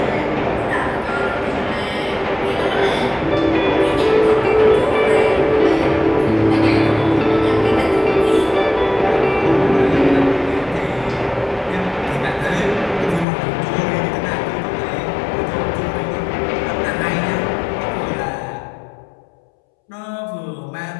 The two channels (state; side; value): drops out; right; at 13.2 s